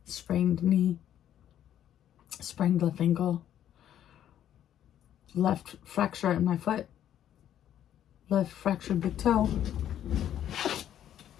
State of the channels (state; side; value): quieter; right; 10.8 dB